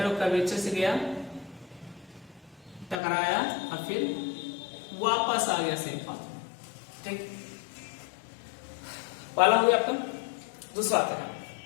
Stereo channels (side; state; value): right; drops out; at 3.0 s